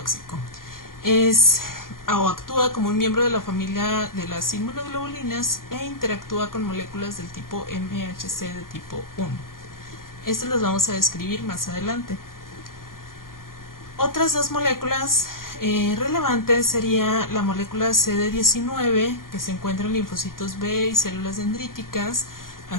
Actúa como un miembro de la familia de las inmunoglobulinas e interactúa con moléculas del tipo MHC de tipo 1. Estas las vamos a describir más adelante. Otras dos moléculas relevantes sería la molécula CD19, que se encuentra en linfocitos B y células dendríticas,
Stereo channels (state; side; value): late; right; 0.91 ms